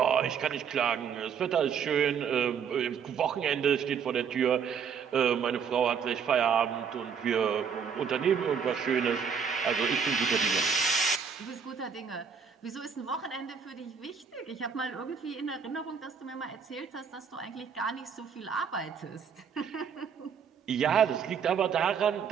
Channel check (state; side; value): quieter; left; 6.8 dB